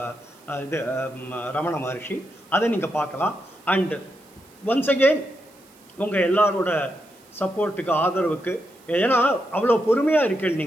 இது ரமண மகரிஷி, அதை நீங்கள் பார்க்கலாம். அண்ட் ஒன்ஸ் அகெயின் உங்கள் எல்லாரோட சப்போர்ட்டுக்கு, ஆதரவுக்கு, ஏன்னா அவ்வளோ பொறுமையாக இருக்கீங்க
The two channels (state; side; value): noise; right; hiss, 29 dB below the sound